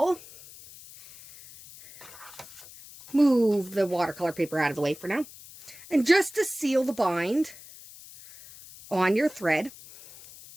Move the watercolor paper out of the way for now. And just to seal the bind on your thread,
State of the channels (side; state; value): left; noise; hiss, 19 dB below the sound